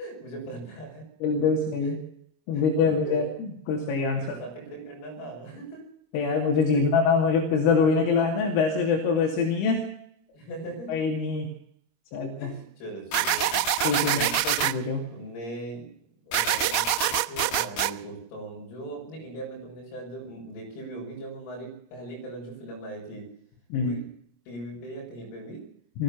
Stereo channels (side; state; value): right; late; 26 ms